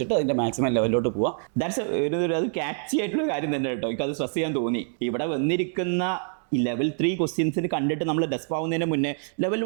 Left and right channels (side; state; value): left; silent; 61 dB below the other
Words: അതിൻ്റെ മാക്സിമം ലെവലിലോട്ട് പോവാം. ദാറ്റ്സ് അത് ക്യാച്ചി ആയിട്ടുള്ള കാര്യം തന്നെ കേട്ടോ. എനിക്കത് സ്ട്രെസ് ചെയ്യാൻ തോന്നി. ഇവിടെ വന്നിരിക്കുന്ന ഈ ലെവൽ 3 ക്വസ്റ്റ്യൻസിന് കണ്ടിട്ട് നമ്മൾ ഡെസ്പ് ആവുന്നതിന് മുന്നേ ലെവൽ